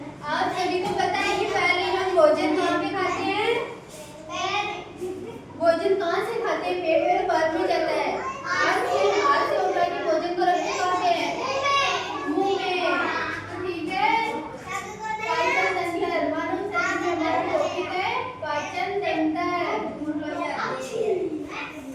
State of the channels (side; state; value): both; identical; correlation 1.00